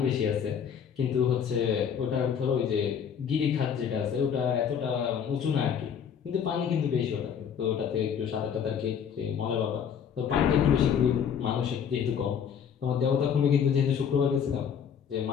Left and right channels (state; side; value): quieter; right; 7.8 dB